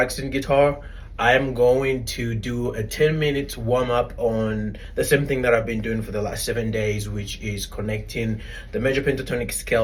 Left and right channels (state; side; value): identical; both; correlation 1.00